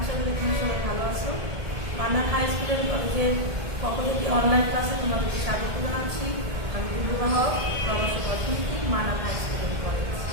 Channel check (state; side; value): late; left; 1.7 ms